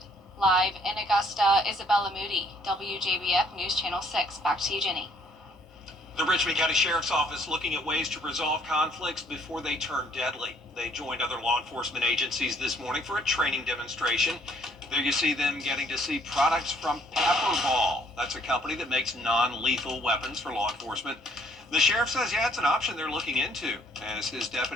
Live in Augusta, Isabella Moody, WJBF News Channel 6. Back to you, Jenny. The Richmond County Sheriff's Office looking at ways to resolve conflicts before they turn deadly. They joined other law enforcement agencies this morning for a training demonstration. There you see them getting to see products from Pepperball. That's a company that makes non-lethal weapons for law enforcement. The sheriff says, yeah, it's an option they're looking into as his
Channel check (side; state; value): both; normal; correlation 0.64